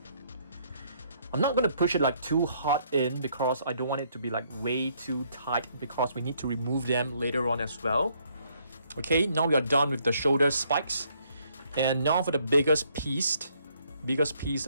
I'm not going to push it like too hard in because I don't want it to be like way too tight, because we need to remove them later on as well. Okay, now we are done with the shoulder spikes. And now for the biggest piece,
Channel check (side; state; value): both; inverted; correlation -0.68